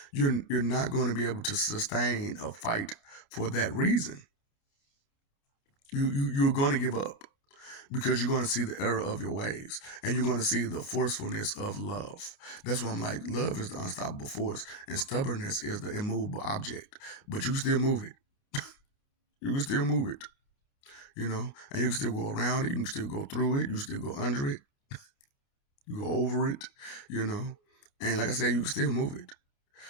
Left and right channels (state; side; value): late; right; 29 ms